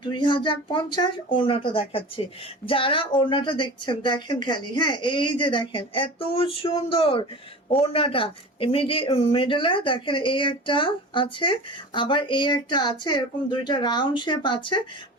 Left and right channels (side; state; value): both; normal; correlation 0.35